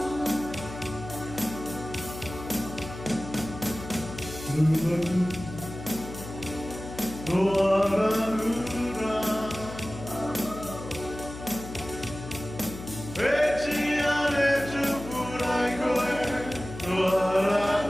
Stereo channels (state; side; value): noise; left; hum, 12 dB below the sound